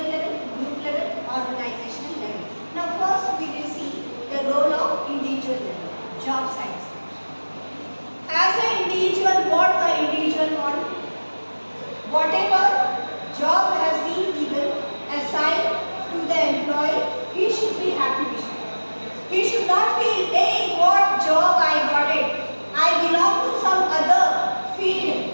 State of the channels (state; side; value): inverted; both; correlation -1.00